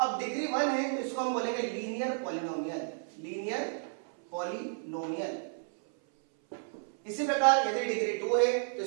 डिग्री 1 है तो इसको हम बोलेंगे लीनियर पॉलिनोमियल, लीनियर पॉलिनोमियल। इसी प्रकार यदि डिग्री 2 है तो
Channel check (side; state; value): left; silent; 56 dB below the other